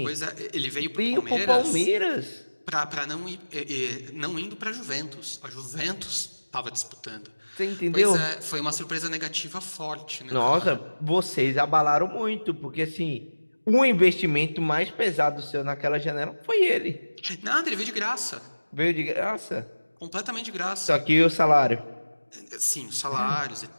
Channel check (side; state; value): both; inverted; correlation -1.00